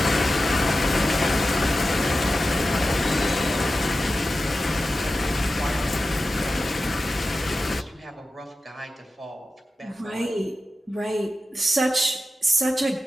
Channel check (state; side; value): normal; both; correlation 0.93